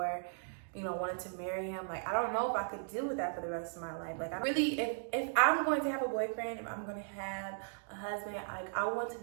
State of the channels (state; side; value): silent; left; digital silence